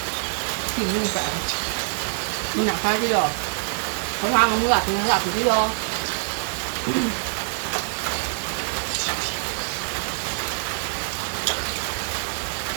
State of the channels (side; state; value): left; silent; 62 dB below the other